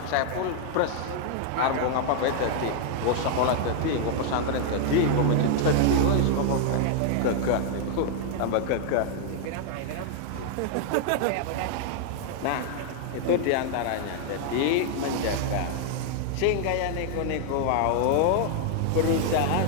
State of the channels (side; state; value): both; different; correlation -0.01